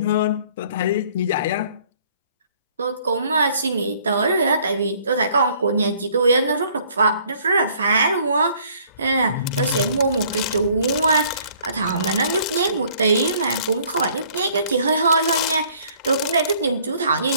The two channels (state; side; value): inverted; both; correlation -0.59